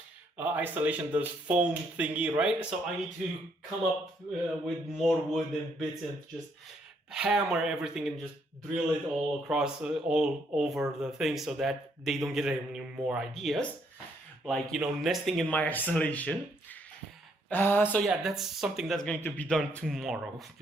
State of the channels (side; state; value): both; normal; correlation 0.71